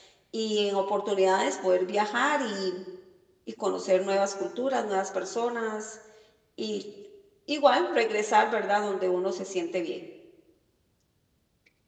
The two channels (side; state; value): both; identical; correlation 1.00